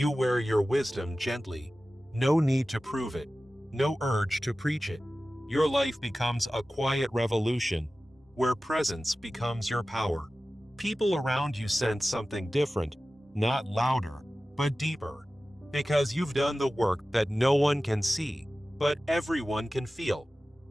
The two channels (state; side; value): normal; both; correlation 0.96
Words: wear your wisdom gently. No need to prove it. No urge to preach it. Your life becomes a quiet revolution, where presence becomes your power. People around you sense something different, not louder, but deeper, because you've done the work that no one can see, but everyone can feel.